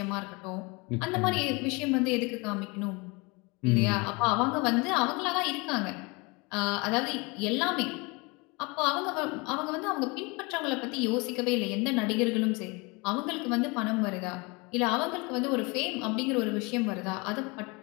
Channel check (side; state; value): right; quieter; 27.5 dB